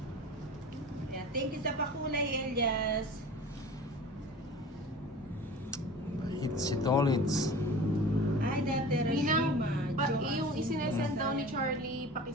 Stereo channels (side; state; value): both; normal; correlation 0.39